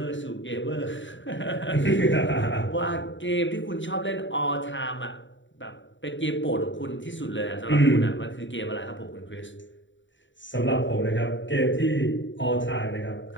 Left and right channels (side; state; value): right; late; 0.54 ms